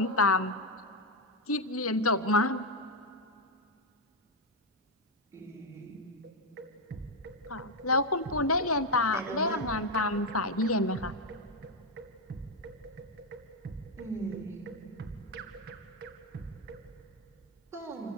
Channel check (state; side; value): normal; both; correlation 0.04